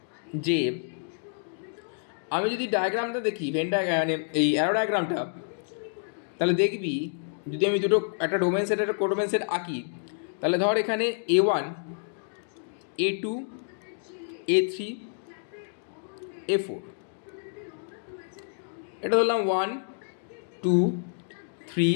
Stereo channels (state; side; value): silent; right; digital silence